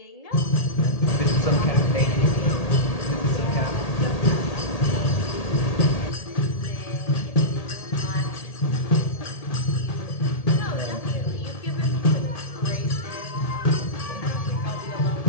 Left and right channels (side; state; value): right; late; 1.8 ms